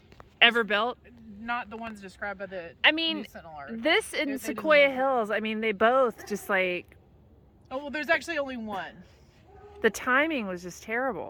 ever built? not the ones described by the I mean, News Sentinel article. this They and didn't Sequoia make it. Hills. I mean, they both just like Oh well, there's actually only one. the timing was just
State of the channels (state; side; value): identical; both; correlation 1.00